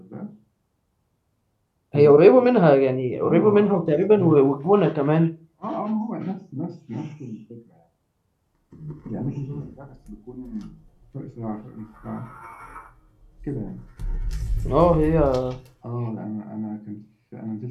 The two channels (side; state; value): both; identical; correlation 1.00